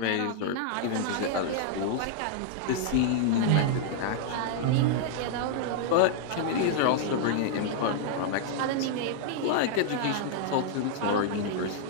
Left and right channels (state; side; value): different; both; correlation -0.01